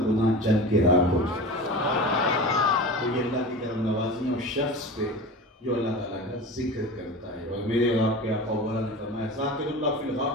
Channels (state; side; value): normal; both; correlation 0.32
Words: گناہ جل کے راکھ ہو جاتا ہے. تو یہ اللہ کی طرف نوازی اور شخص پہ جو اللہ تعالیٰ کا ذکر کرتا ہے. اور میرے اور آپ کے آقا وغیرہ نے فرمایا ذاکر اللہ فی